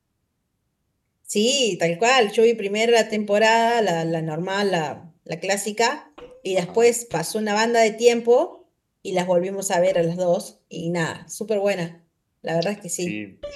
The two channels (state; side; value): identical; both; correlation 1.00